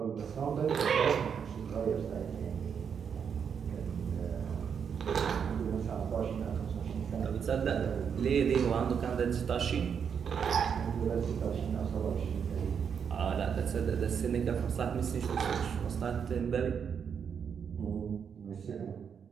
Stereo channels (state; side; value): quieter; left; 7.1 dB